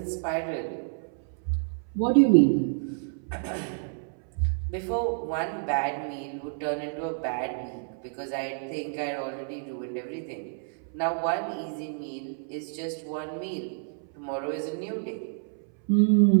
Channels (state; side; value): silent; left; 59 dB below the other